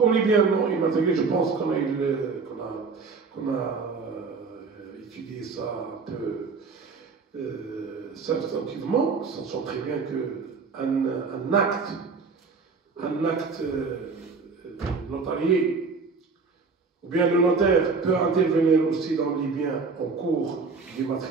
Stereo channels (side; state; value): left; quieter; 4.7 dB